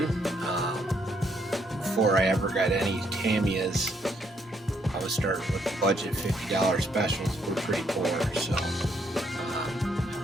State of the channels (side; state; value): both; normal; correlation 0.72